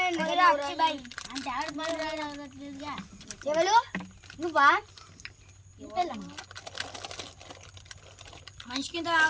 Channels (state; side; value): identical; both; correlation 1.00